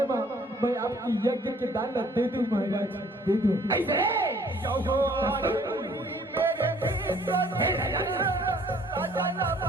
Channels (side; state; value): both; normal; correlation 0.58